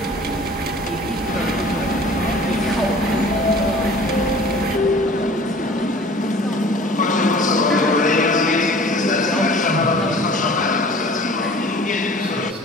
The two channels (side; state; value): both; normal; correlation 0.46